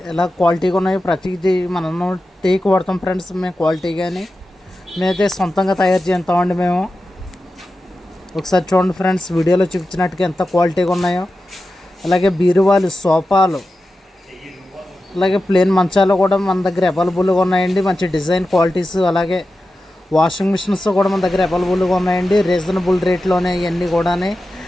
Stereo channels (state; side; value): normal; both; correlation 0.92